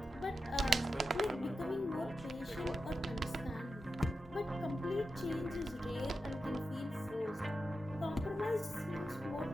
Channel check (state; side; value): normal; both; correlation 0.90